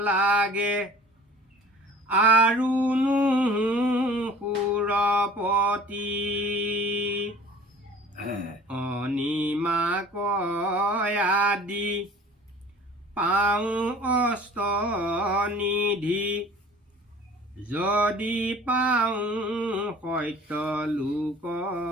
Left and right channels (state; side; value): normal; both; correlation 0.46